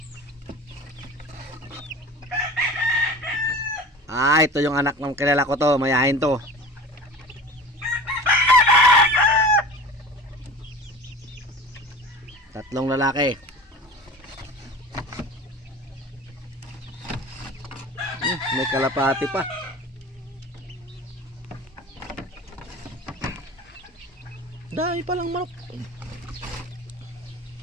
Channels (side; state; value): both; normal; correlation 0.37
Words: Ah, ito yung anak ng kilala ko to. Mayahin to. Tatlong lalaki. May kalapati pa. Dami palang manok.